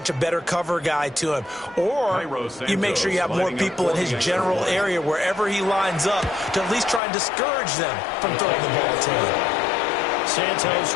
a better cover guy to him. Or you make sure you have more people in his general area wherever he lines up to at least try and discourage them from throwing the ball to him. Santos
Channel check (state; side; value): drops out; right; at 7.0 s